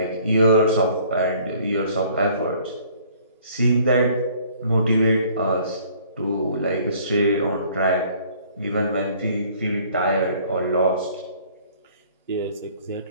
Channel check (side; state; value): both; inverted; correlation -0.56